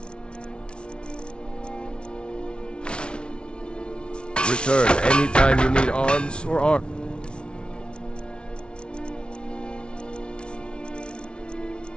Return anytime you need arms or arm.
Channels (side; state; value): right; late; 0.057 ms